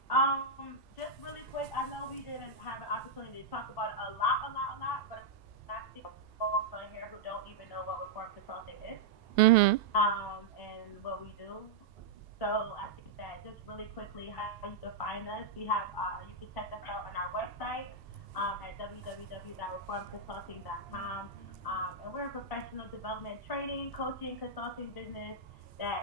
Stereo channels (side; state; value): left; quieter; 3.8 dB